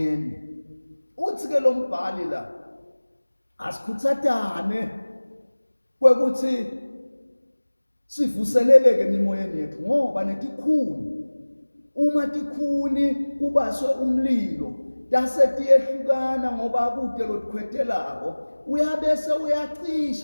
Uthi ke lo mbhali la asikhuthathane kwekuthi sivuseleleke emimoyeni yethu ngoba netikhuni uma tikhuni kubaswe umlilo dase tiyehlukana ngoba kude lotikhwetelako uyabese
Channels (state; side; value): inverted; both; correlation -1.00